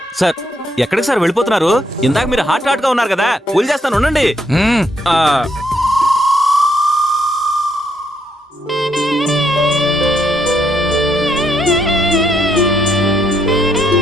సార్ ఎక్కడికి సార్ వెళ్ళిపోతున్నారు? ఇందాక మీరు హాట్ గా ఉన్నారు కదా, పూలు చేస్తాను ఉండండి. మ్మ్. ఆ,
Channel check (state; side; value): normal; both; correlation 0.74